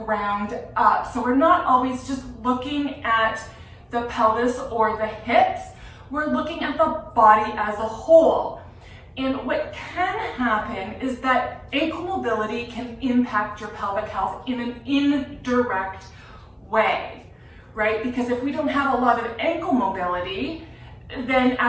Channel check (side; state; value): both; identical; correlation 1.00